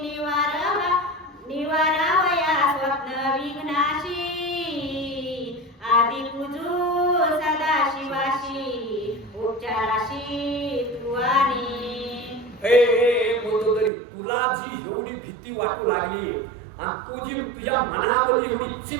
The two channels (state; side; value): drops out; left; at 13.9 s